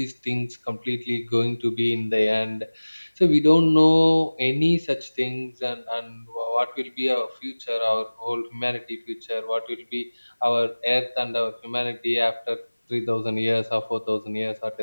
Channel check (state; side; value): inverted; both; correlation -1.00